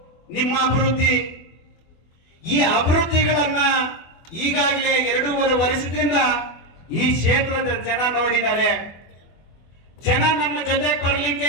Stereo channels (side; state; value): right; late; 24 ms